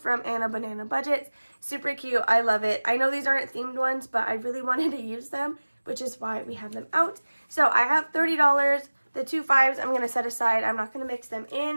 Anna Banana Budgets. Super cute. I love it. I know these aren't themed ones, but I really wanted to use them, which is why we have them out. So I have $30. The 2 5s I'm going to set aside. I'm not going to mix them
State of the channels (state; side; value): inverted; both; correlation -1.00